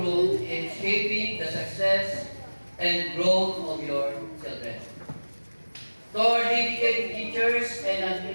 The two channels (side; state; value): both; inverted; correlation -1.00